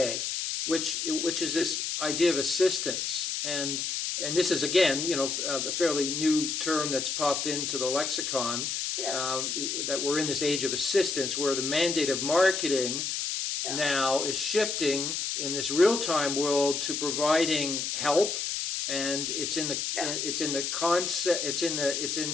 which is this idea of assistance? And this is, again, a fairly new term that's popped into the lexicon, that we're in this age of assistance, where the mandate of marketing now is shifting in this real-time world to providing help, and it's in the concept, it's in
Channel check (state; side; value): noise; left; hiss, 2 dB below the sound